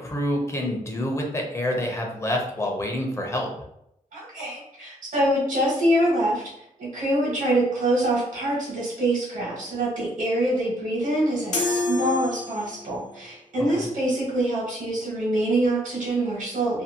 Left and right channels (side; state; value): both; normal; correlation 0.66